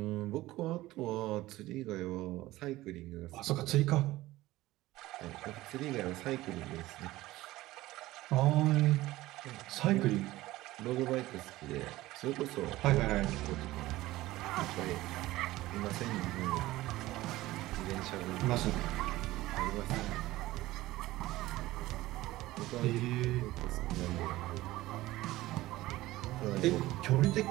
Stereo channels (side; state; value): left; quieter; 17.3 dB